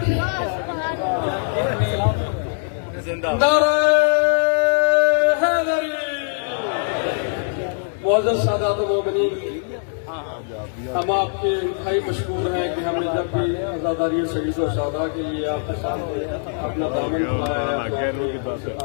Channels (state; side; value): silent; right; digital silence